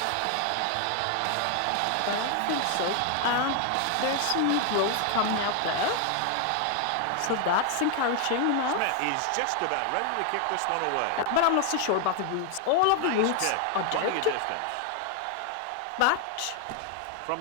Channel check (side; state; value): both; different; correlation 0.00